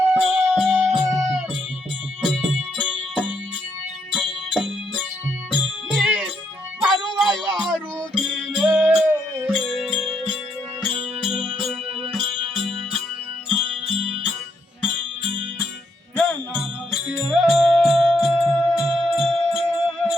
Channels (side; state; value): both; normal; correlation 0.76